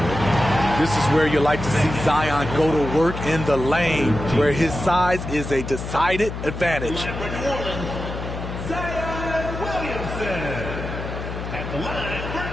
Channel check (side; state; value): left; noise; hum, 7 dB below the sound